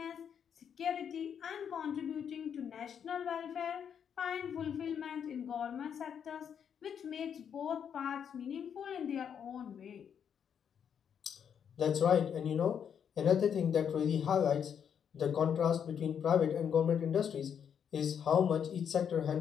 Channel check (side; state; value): right; quieter; 8.0 dB